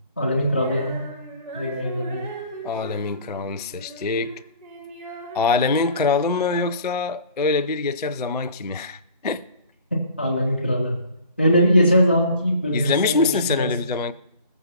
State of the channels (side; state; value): both; inverted; correlation -0.47